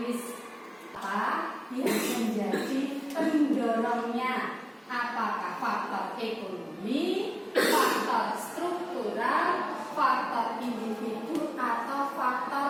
Apa yang menjadi pendorongnya? Apakah faktor ekonomi, faktor struktural, faktor individu, atau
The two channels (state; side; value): identical; both; correlation 1.00